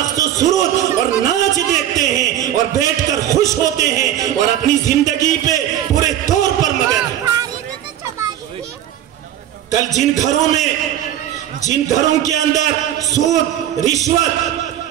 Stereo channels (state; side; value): quieter; left; 11.5 dB